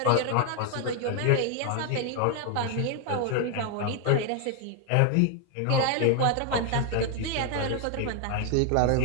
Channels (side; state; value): both; different; correlation 0.00